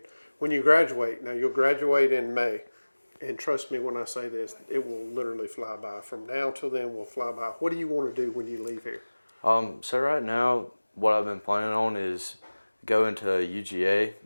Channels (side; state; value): both; inverted; correlation -1.00